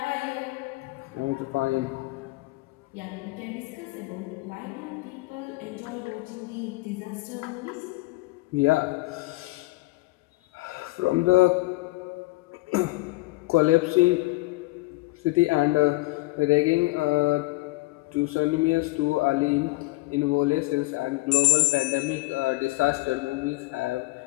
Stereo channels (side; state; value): right; quieter; 21.7 dB